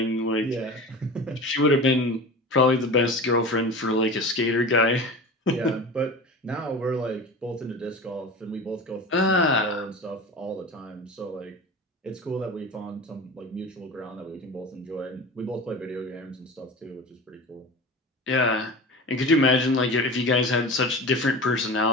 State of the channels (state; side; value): normal; both; correlation 0.32